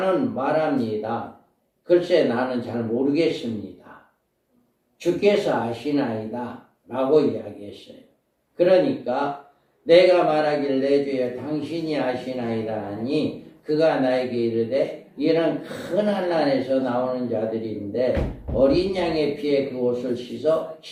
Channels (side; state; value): both; identical; correlation 1.00